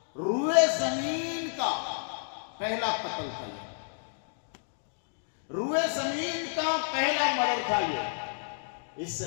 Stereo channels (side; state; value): right; silent; digital silence